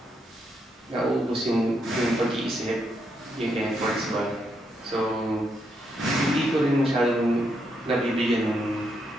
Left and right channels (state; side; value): normal; both; correlation 0.79